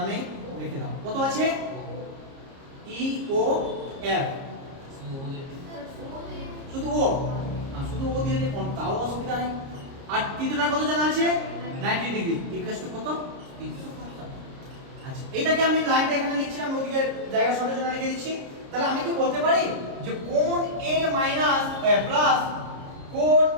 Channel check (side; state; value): left; late; 30 ms